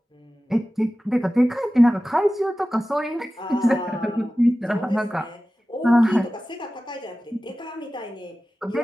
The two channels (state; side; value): normal; both; correlation 0.95